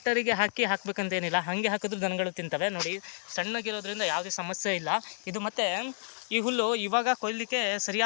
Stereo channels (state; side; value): silent; right; digital silence